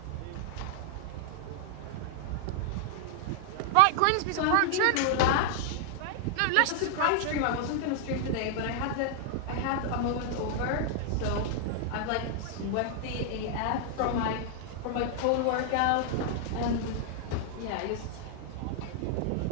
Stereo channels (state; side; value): different; both; correlation 0.00